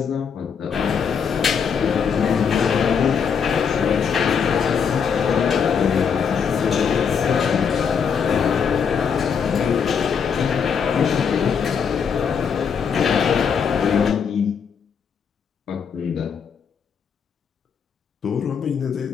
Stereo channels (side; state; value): right; quieter; 6.7 dB